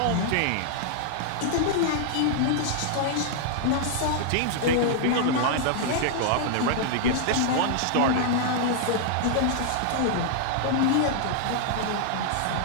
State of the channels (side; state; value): both; different; correlation -0.01